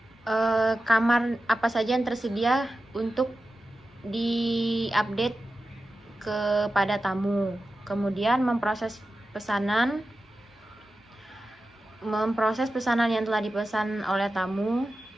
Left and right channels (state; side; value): normal; both; correlation 0.92